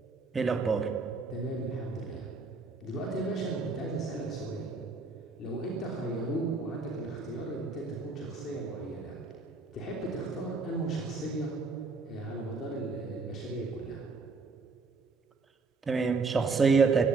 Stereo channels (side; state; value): left; quieter; 4.1 dB